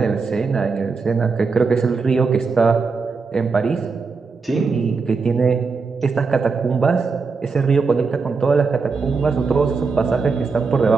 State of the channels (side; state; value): left; quieter; 4.7 dB